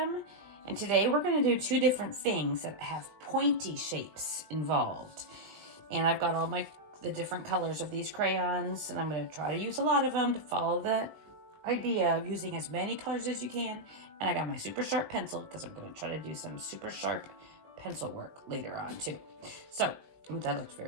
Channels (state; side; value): late; left; 20 ms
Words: And today we're gonna do two different things that have pointy shapes involved. And I've got all the different colors of these crayons, and I'm gonna try to use a lot of them to follow the idea of using as many colors as you can. And I got my super sharp pencil because I'm gonna try to do some super sharp pencil work later on too. So, ooh, that looks